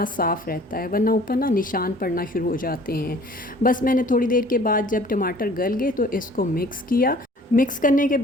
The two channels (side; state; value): both; normal; correlation 0.51